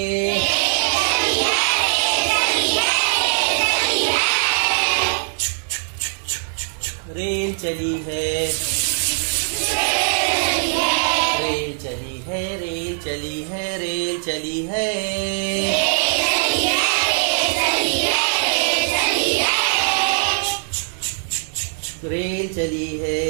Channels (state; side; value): silent; left; digital silence